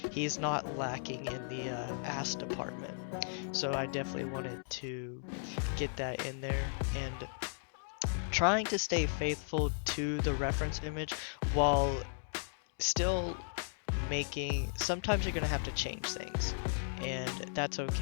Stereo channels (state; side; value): silent; right; digital silence